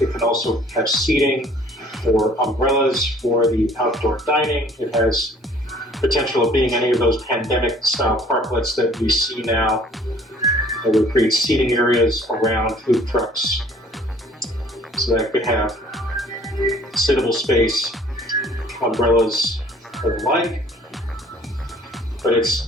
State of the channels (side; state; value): both; normal; correlation 0.55